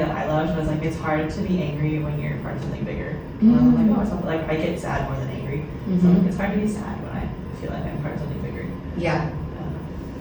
I loved was like, it's hard to be angry when you're part of something bigger. I'm like, oh, it's not, like I get sad more than angry. So like, it's hard to be sad when I feel like I'm part of something bigger. Yeah.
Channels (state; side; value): identical; both; correlation 1.00